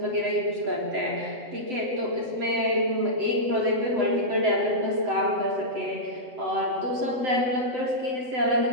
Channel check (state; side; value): late; left; 7.8 ms